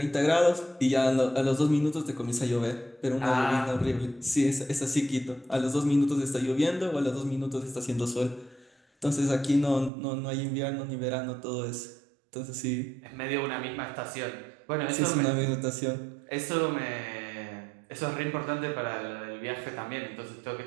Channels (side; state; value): left; drops out; at 9.9 s